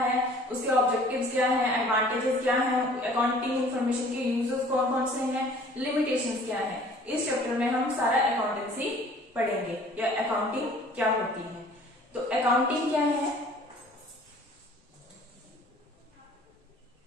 उसके ऑब्जेक्टिव्स क्या हैं, एडवांटेजेस क्या हैं, अकाउंटिंग इंफॉर्मेशन के यूजर्स कौन कौन से हैं, लिमिटेशंस क्या हैं, इस चैप्टर में हम सारा अकाउंटेंसी पढ़ेंगे या अकाउंटिंग क्या होती है। तो अकाउंटिंग क्या है,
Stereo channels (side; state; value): both; normal; correlation 0.52